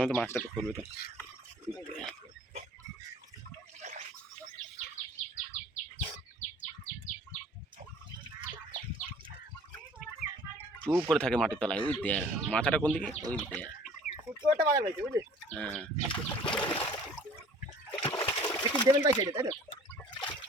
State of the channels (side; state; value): both; normal; correlation 0.51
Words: তো মাছটা তো করবে তো। চুপ করে থাকে মাটির তলায়, ওই দেখ মাথাটা কোন দিকে, ওই দেখ। হ্যাঁ দেবেন ভাই তাই তো